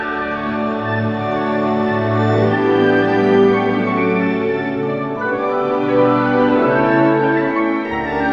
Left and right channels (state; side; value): identical; both; correlation 1.00